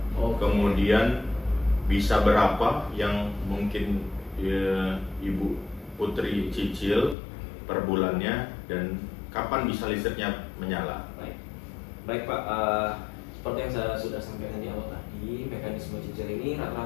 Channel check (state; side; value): drops out; right; at 7.2 s